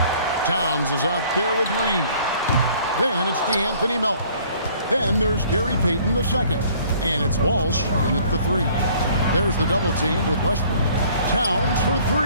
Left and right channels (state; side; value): inverted; both; correlation -0.56